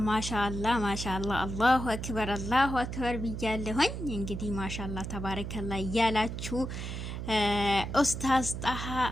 ማሻአላህ ማሻአላህ አላሁ አክበር ብያለሁኝ። እንግዲህ ማሻአላህ ተባረከላህ እያላችሁ ኡስታዝ ጣሃ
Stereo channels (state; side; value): noise; right; hum, 6 dB below the sound